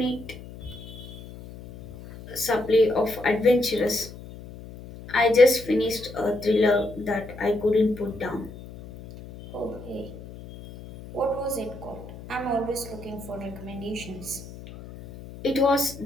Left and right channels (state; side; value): noise; left; hum, 15 dB below the sound